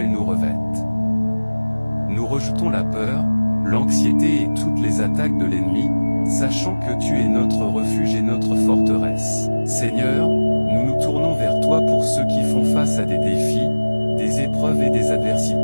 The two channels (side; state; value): both; inverted; correlation -1.00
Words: nous revête. Nous rejetons la peur, l'anxiété et toutes les attaques de l'ennemi, sachant que tu es notre refuge et notre forteresse. Seigneur, nous nous tournons vers toi pour ceux qui font face à des défis, des épreuves et des